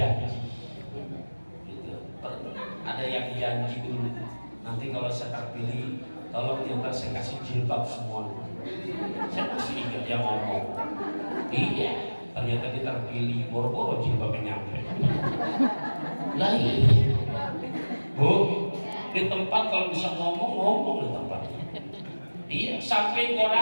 gitu. Ada yang janji dulu, nanti kalau saya terpilih, tolong ntar saya kasih jilbab semua. Saya masih ingat dia ngomong, iya. Ternyata dia terpilih, boro-boro jilbabnya nyampe. Lah iya. Bu, di tempat kalau bisa ngomong di tempat. Iya, sampai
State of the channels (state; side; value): inverted; both; correlation -1.00